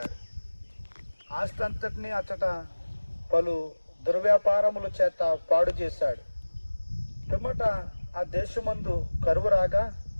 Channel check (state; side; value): inverted; both; correlation -1.00